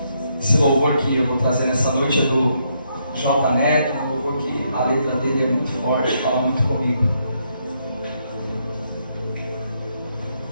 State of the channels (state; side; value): inverted; both; correlation -0.76